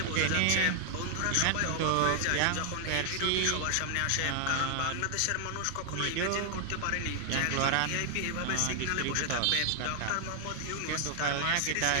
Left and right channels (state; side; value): different; both; correlation 0.00